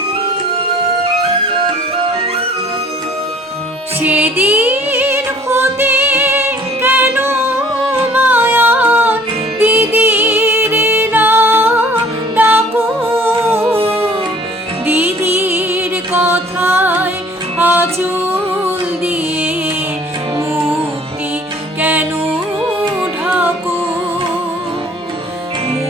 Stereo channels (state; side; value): normal; both; correlation 0.54